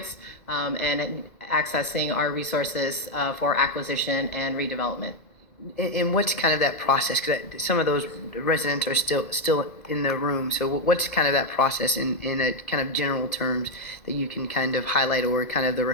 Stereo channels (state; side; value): late; right; 2.3 ms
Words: and accessing our resources for acquisition and redevelopment. And what's kind of that process? Because some of those residents are still in the room. So what's kind of that process in a kind of general terms that you can kind of highlight, or kind of the